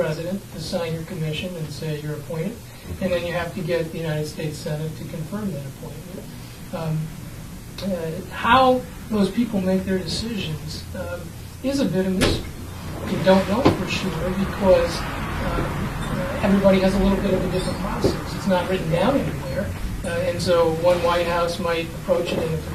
to sign your commission and say you're appointed, and then you have to get the United States Senate to confirm that appointment. How those people make their decisions is a bit of mystery. You don't know for sure because everybody has a little bit of a different process. It's not written down anywhere. And so one White House might approach it in a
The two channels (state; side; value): identical; both; correlation 1.00